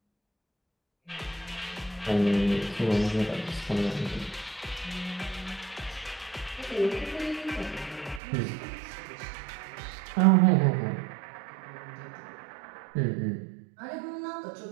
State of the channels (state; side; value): drops out; left; at 8.2 s